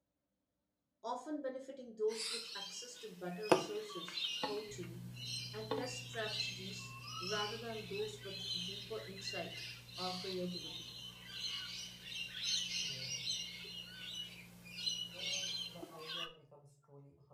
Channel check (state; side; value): identical; both; correlation 1.00